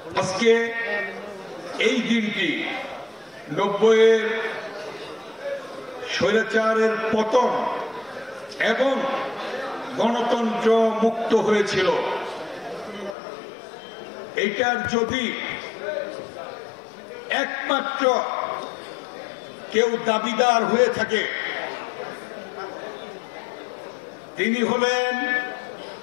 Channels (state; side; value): drops out; right; at 13.2 s